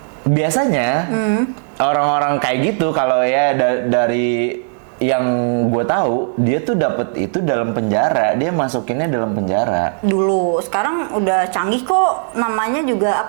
biasanya orang-orang kayak gitu, kalau ya dari yang gue tahu, dia tuh dapet itu dalam penjara, dia masukinnya dalam penjara. Dulu, sekarang udah canggih kok, namanya juga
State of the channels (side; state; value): left; silent; digital silence